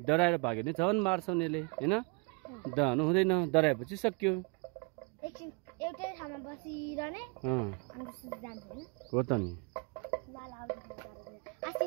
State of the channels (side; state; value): left; quieter; 33.2 dB